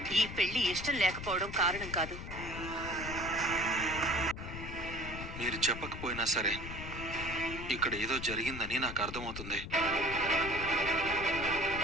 ఈ పెళ్లి ఇష్టం లేకపోవడం కారణం కాదు. మీరు చెప్పకపోయినా సరే ఇక్కడ ఏదో జరిగిందని నాకు అర్థమవుతుంది.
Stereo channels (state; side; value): noise; left; rumble, 9 dB below the sound